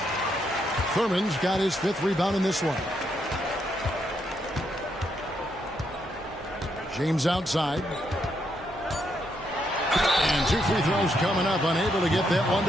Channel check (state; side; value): normal; both; correlation 0.78